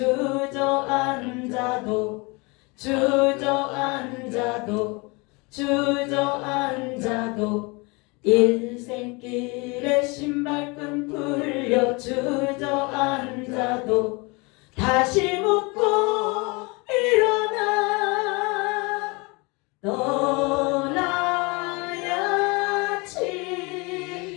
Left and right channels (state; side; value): quieter; right; 27.7 dB